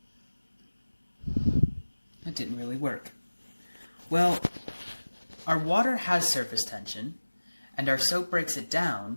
That didn't really work. Well, our water has surface tension, and our soap breaks it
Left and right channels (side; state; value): both; inverted; correlation -1.00